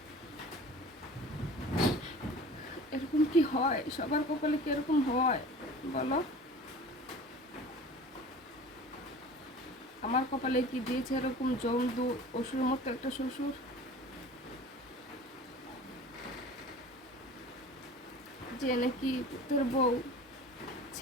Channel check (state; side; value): normal; both; correlation 0.41